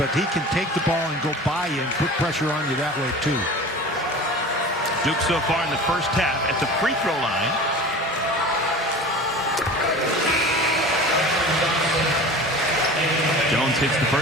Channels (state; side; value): normal; both; correlation 0.37